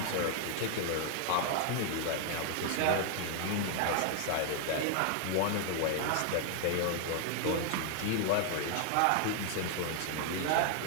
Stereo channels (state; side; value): different; both; correlation 0.00